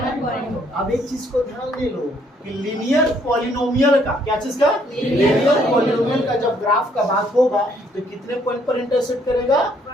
point. अब एक चीज को ध्यान दे लो कि लीनियर पॉलिनोमियल का क्या चीज का लीनियर पॉलिनोमियल का जब ग्राफ का बात होगा तो कितने पॉइंट पर इंटरसेक्ट करेगा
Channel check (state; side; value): normal; both; correlation 0.67